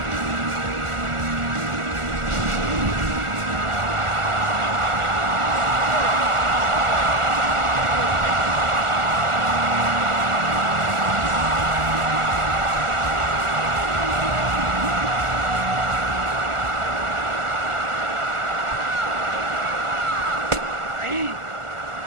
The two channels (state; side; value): late; left; 1.4 ms